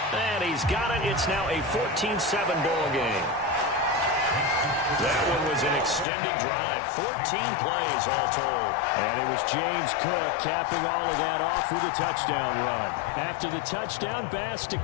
And he's got it. It's now a 14-7 ball game. That one was an extended drive. 14 plays all told. And it was James Cook capping all of that off with a touchdown run. After the touchdown, Bass to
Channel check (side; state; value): right; drops out; at 6.1 s